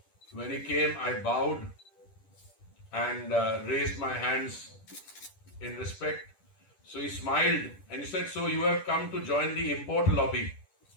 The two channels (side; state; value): right; late; 10 ms